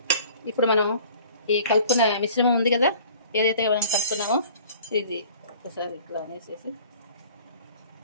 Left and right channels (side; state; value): both; inverted; correlation -0.49